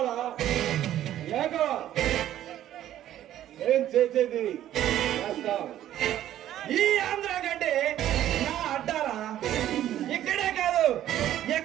లేక ఏం చేసేది ఈ ఆంధ్ర గడ్డి నా అడ్డారా ఇక్కడే కాదు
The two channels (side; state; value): left; quieter; 12.3 dB